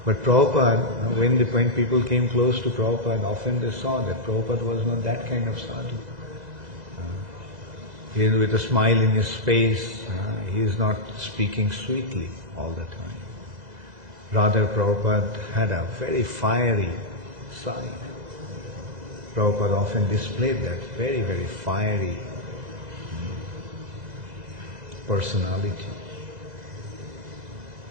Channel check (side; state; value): left; late; 2.0 ms